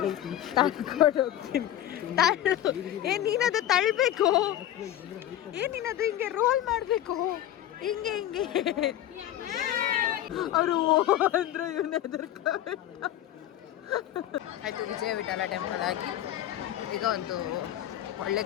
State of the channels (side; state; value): right; quieter; 12.4 dB